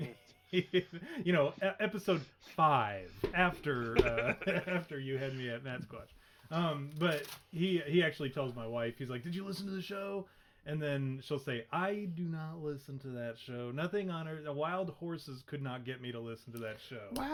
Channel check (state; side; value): identical; both; correlation 1.00